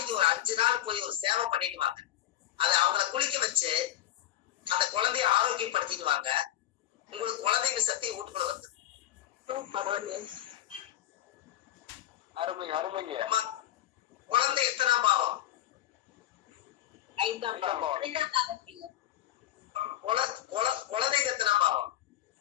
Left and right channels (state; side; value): quieter; right; 13.5 dB